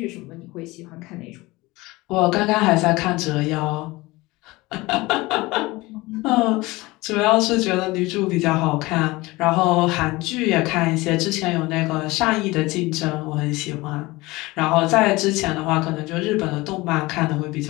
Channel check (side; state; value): right; quieter; 21.2 dB